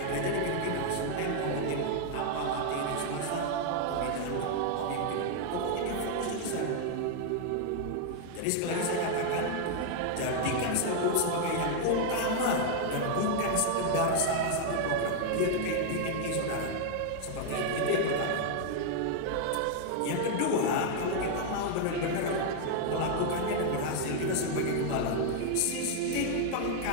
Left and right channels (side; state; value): both; different; correlation 0.00